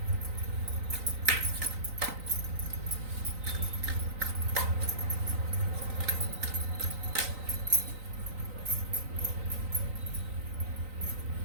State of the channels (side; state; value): left; late; 3.9 ms